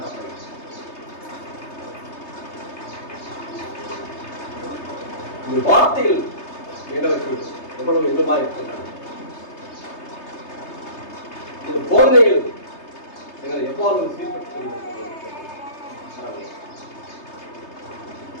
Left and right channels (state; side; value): late; right; 3.3 ms